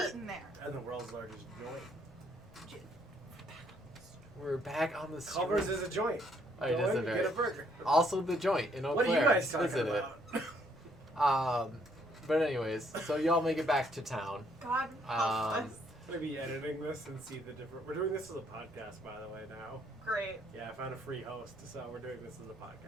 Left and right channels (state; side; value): normal; both; correlation 0.68